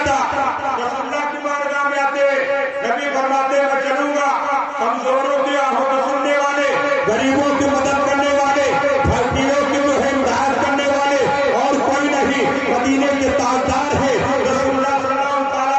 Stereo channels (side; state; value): both; identical; correlation 1.00